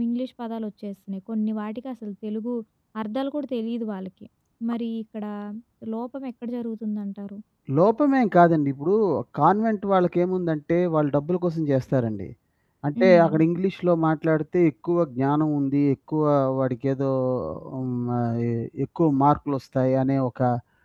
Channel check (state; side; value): identical; both; correlation 1.00